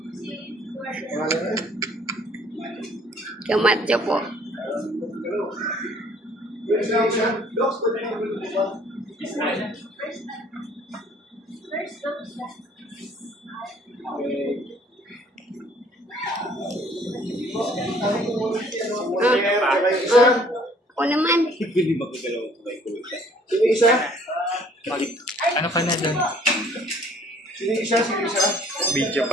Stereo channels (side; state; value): both; normal; correlation 0.58